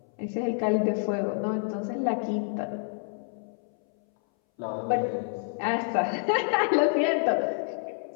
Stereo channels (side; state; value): right; silent; 59 dB below the other